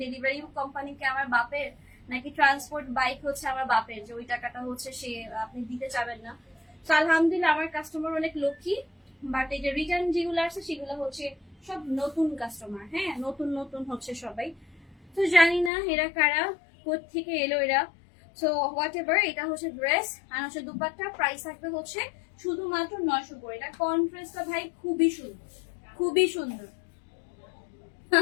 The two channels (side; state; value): right; drops out; at 15.7 s